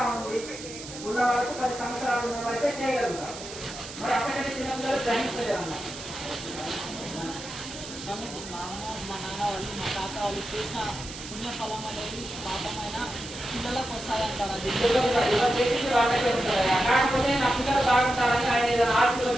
ఉంది ఉన్న వాళ్ళకు 10 సంవత్సరాలు ఉన్న వాళ్ళైతే చేయగలుగుతారు. మరి అప్పటికంటే చిన్నపిల్లలు గ్రహించలేరు అన్నమాట. మా నాన్న వాళ్ళు మా తాత వాళ్ళు చేసిన పుణ్యఫలం అనేది పాపమైన పిల్లలకు వస్తాయంటారు. అది కాకపోతే నా పిల్లలు బాగుంటారని ఆయన ఏదైనా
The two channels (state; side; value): noise; right; hiss, 12 dB below the sound